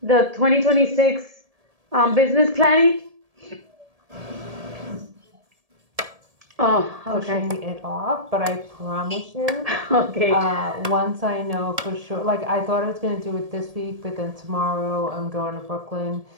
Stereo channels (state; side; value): late; left; 1.7 ms